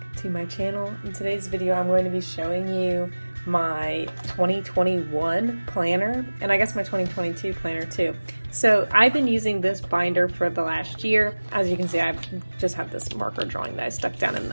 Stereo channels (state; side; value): inverted; both; correlation -1.00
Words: to my channel. In today's video, I'm going to be showing you my 2021 planner, and I guess my 2022 planner too. So I've been using this binder for the last year. As you can see, I just have this marker drawing that I stuck down in